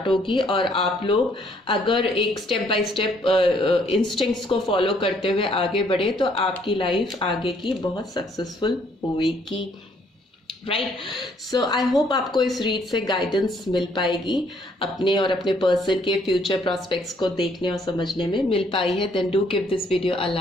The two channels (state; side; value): normal; both; correlation 0.66